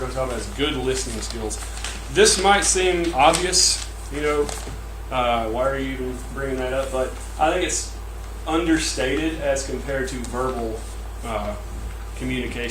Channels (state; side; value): identical; both; correlation 1.00